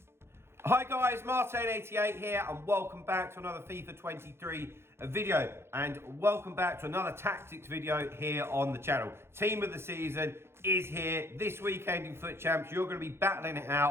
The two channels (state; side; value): late; left; 0.12 ms